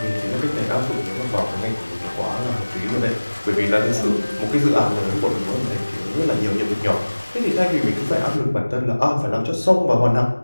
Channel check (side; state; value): both; inverted; correlation -1.00